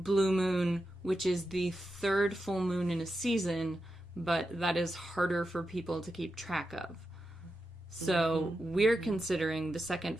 moon, which is the third full moon in a season, but that is harder for people to keep track of. So we're considering the second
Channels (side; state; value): both; normal; correlation 0.89